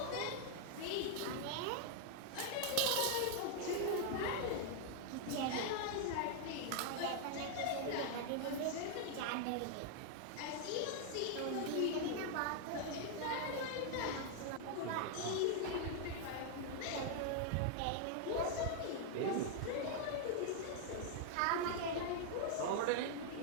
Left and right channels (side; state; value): both; different; correlation 0.00